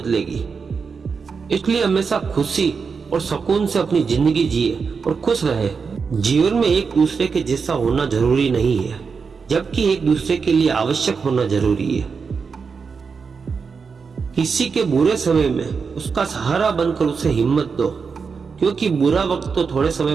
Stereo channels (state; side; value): quieter; left; 5.4 dB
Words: इसलिए हमेशा खुशी और सुकून से अपनी जिंदगी जिए और खुश रहे। जीवन में एक दूसरे के जैसा होना जरूरी नहीं है, जबकि एक दूसरे के लिए आवश्यक होना जरूरी है। किसी के बुरे समय में उसका सहारा बनकर उसे हिम्मत दो, क्योंकि बुरा वक्त तो थोड़े